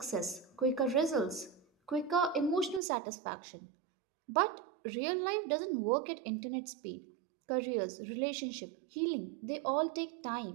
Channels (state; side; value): drops out; left; at 2.8 s